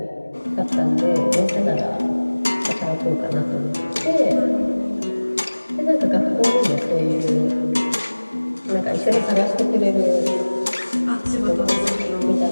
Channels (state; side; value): inverted; both; correlation -1.00